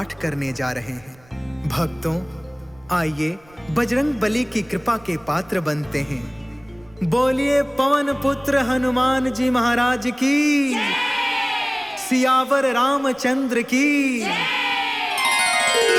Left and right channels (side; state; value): right; noise; rumble, 28 dB below the sound